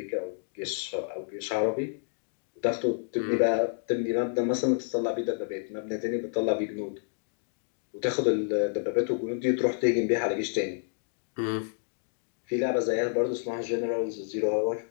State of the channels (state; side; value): silent; right; digital silence